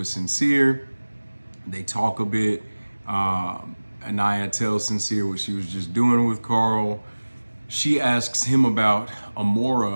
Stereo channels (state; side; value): inverted; both; correlation -1.00